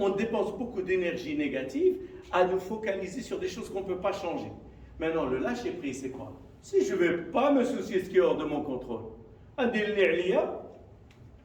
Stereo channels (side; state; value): both; identical; correlation 1.00